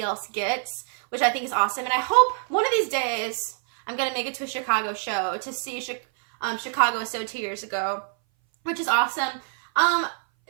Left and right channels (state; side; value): silent; left; 59 dB below the other